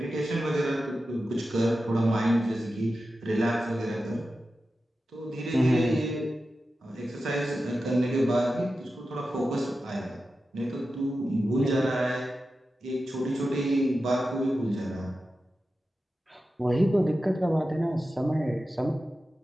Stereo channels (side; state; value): both; normal; correlation 0.92